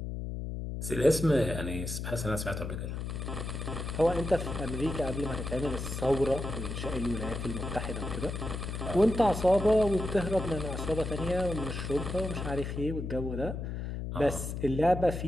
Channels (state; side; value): noise; left; hum, 5 dB below the sound